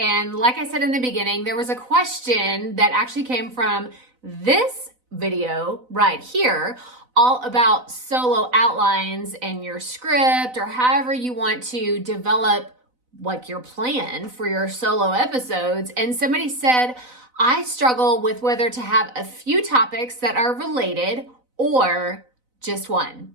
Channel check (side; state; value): left; late; 4.0 ms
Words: like I said in the beginning, there was a question that actually came from this video right here, all about solo outlines and your script, or however you want to develop like your plan for your solo episodes. And somebody said, I struggle with whether to have a few topics that are related or just one.